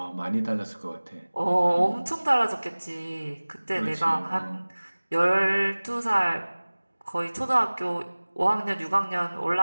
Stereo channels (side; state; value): both; inverted; correlation -1.00